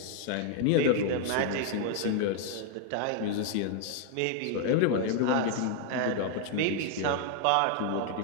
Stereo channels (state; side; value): different; both; correlation 0.00